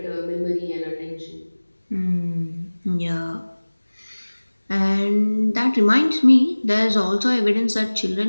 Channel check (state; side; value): inverted; both; correlation -1.00